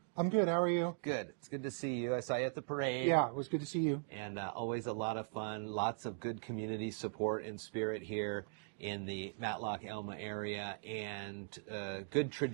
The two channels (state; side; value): silent; left; digital silence